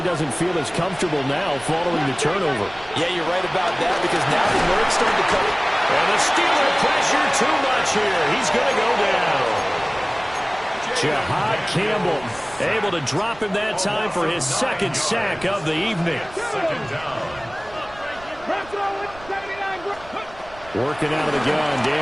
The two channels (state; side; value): noise; right; rumble, 21 dB below the sound